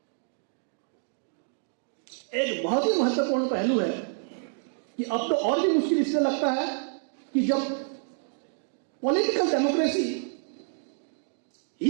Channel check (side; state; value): left; silent; 59 dB below the other